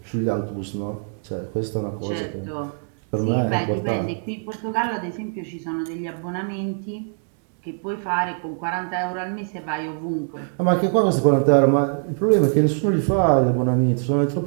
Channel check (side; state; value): left; silent; digital silence